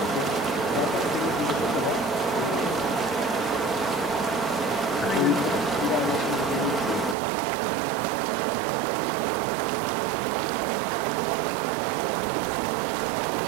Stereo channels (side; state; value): left; drops out; at 7.2 s